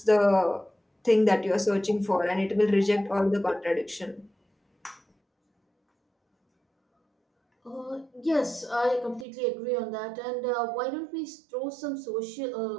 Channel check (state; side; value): drops out; left; at 9.2 s